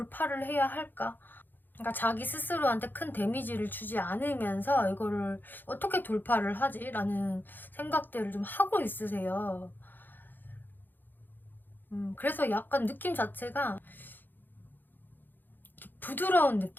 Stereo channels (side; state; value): right; late; 0.090 ms